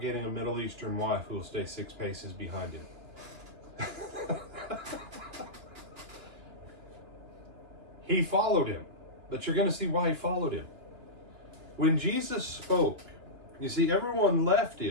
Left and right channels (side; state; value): left; late; 2.9 ms